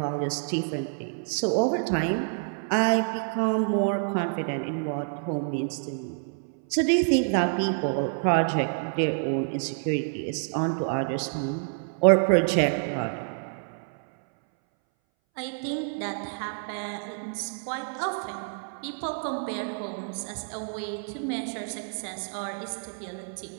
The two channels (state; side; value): silent; left; 59 dB below the other